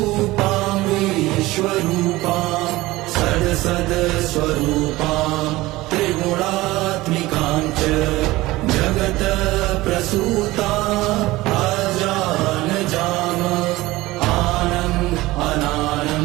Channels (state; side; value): quieter; left; 18.9 dB